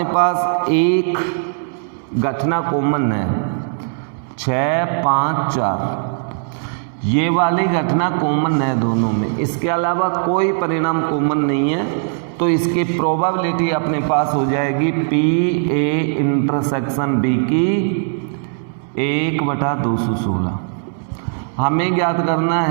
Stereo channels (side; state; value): left; silent; digital silence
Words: पास एक घटना कॉमन है 6, 5, 4, ये वाली घटना कॉमन है दोनों में, इसके अलावा कोई परिणाम कॉमन नहीं है। तो इसकी प्रोबेबिलिटी अपने पास हो जाएगी PA इंटरसेक्शन B की 1/216। हमें ज्ञात करना